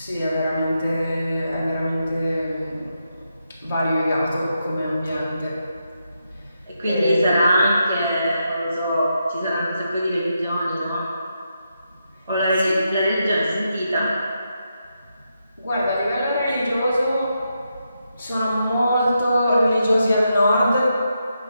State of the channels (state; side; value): inverted; both; correlation -0.84